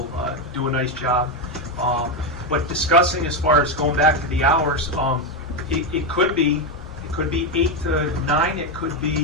do a nice job. But discussing as far as going back to the hours, it could be 8 to 9. It could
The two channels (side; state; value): both; normal; correlation 0.08